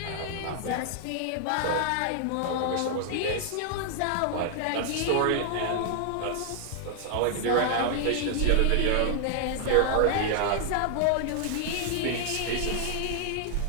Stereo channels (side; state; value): both; different; correlation 0.00